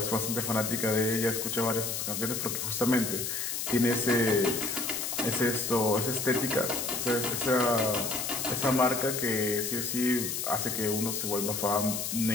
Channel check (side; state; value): left; noise; hiss, 3 dB below the sound